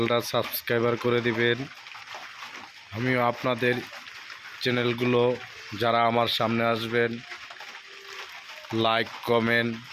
সাবস্ক্রাইবার করে দিবেন। আমিও আপনাদের চ্যানেলগুলো যারা আমার সামনে আসবেন, লাইক, কমেন্ট,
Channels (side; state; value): both; identical; correlation 1.00